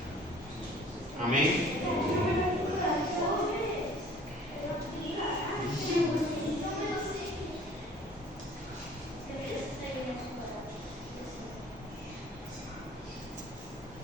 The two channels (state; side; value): normal; both; correlation 0.52